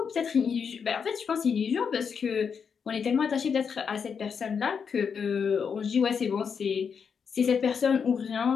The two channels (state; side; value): quieter; right; 6.5 dB